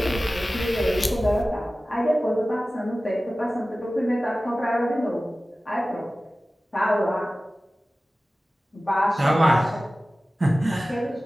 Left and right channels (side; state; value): both; normal; correlation 0.96